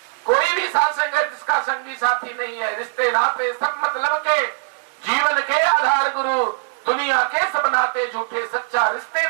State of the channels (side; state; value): left; silent; digital silence